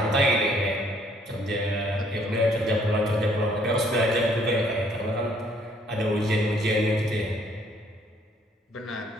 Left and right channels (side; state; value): both; normal; correlation 0.64